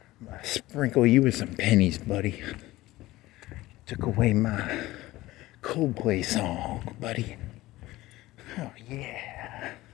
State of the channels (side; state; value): right; quieter; 17.8 dB